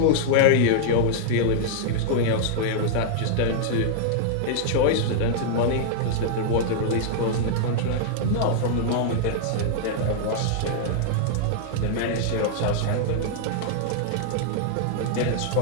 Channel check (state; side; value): different; both; correlation -0.01